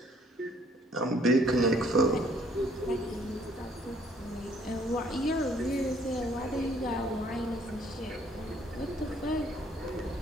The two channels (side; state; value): both; normal; correlation 0.62